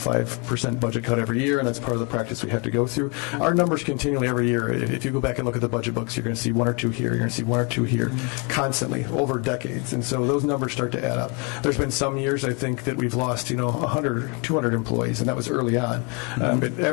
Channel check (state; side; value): quieter; right; 32.5 dB